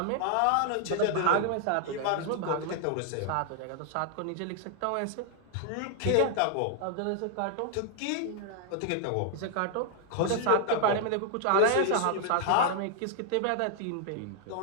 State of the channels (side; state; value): both; different; correlation 0.00